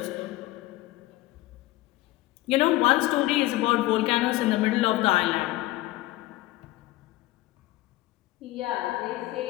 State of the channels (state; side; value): quieter; right; 17.9 dB